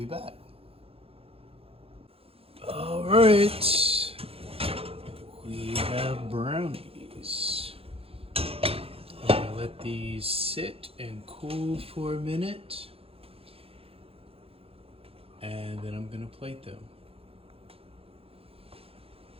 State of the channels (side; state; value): left; late; 0.28 ms